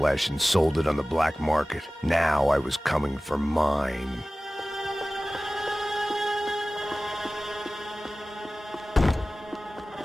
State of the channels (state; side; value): normal; both; correlation 0.97